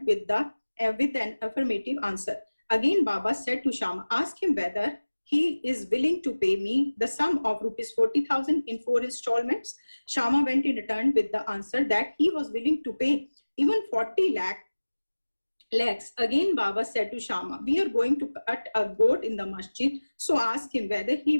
with an affirmative answer. Again, Baba said to Shama, ask him whether he is willing to pay me the sum of rupees 40,000 in 4 installments. Shama went and returned with the answer that he was willing to pay even 40 lakhs. Again, Baba said to Shama, we are going to cut a goat in the masjid, so ask him whether he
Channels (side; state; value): both; inverted; correlation -1.00